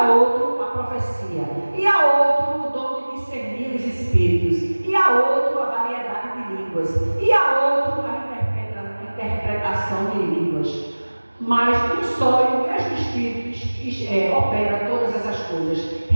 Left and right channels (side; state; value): both; inverted; correlation -1.00